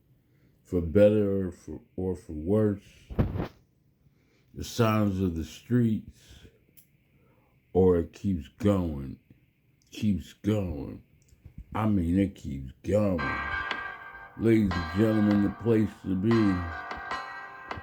For better or for worse, the sounds of the streets, or it keeps going. I mean, it keeps going. Ladies and gentlemen, the place to be.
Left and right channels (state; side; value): identical; both; correlation 1.00